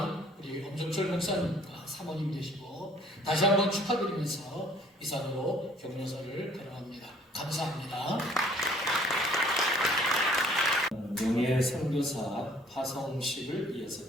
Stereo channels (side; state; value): both; normal; correlation 0.56